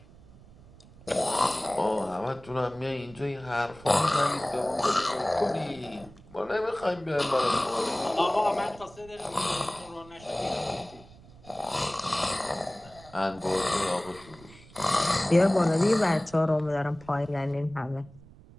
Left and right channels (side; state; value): right; noise; rumble, 22 dB below the sound